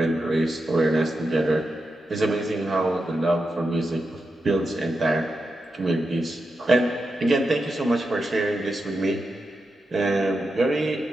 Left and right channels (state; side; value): normal; both; correlation 0.88